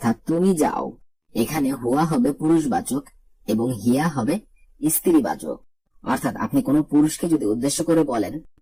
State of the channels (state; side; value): identical; both; correlation 1.00